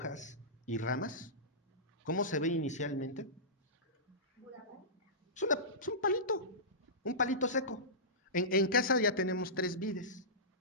y ramas? ¿Cómo se ve inicialmente? Es un palito seco. En casa ya tenemos 3 vides.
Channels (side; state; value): both; normal; correlation -0.20